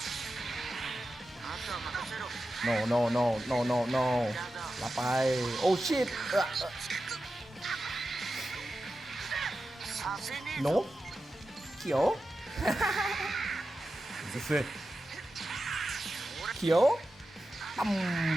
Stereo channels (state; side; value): normal; both; correlation 0.92